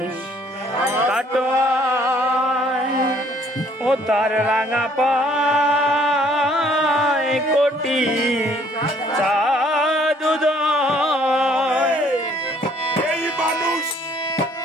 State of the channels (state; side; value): normal; both; correlation 0.62